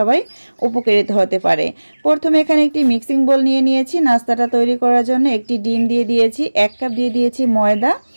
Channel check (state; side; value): inverted; both; correlation -1.00